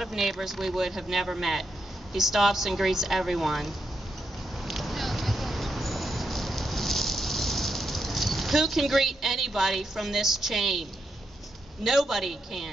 of neighbors we would have never met. He stops and greets everyone. Who can greet anybody from this chain? Nobody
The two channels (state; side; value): normal; both; correlation 0.83